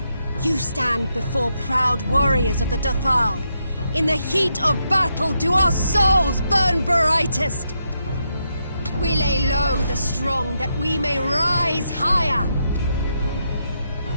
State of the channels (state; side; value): inverted; both; correlation -0.81